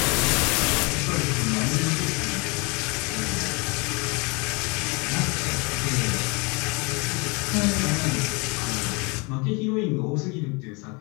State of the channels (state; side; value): quieter; right; 29.5 dB